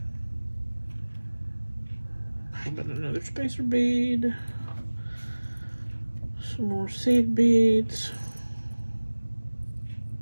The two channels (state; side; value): inverted; both; correlation -1.00